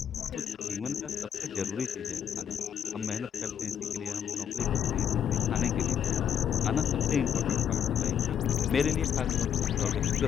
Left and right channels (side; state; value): right; quieter; 8.7 dB